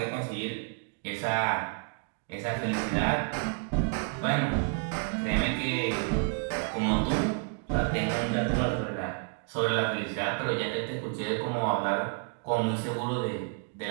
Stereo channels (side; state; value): left; quieter; 37.2 dB